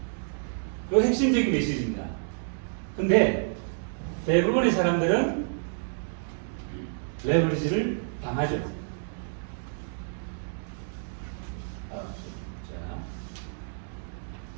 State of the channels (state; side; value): silent; left; digital silence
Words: 그 핵심적인 메시지입니다. 근데 대부분의 사람들은 레버리지를 당하죠.